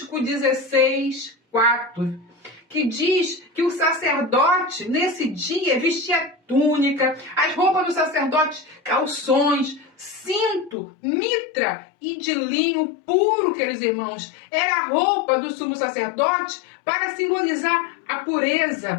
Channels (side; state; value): right; drops out; at 10.8 s